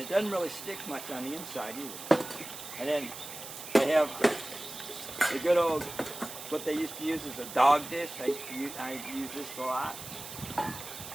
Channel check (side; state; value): right; noise; hiss, 11 dB below the sound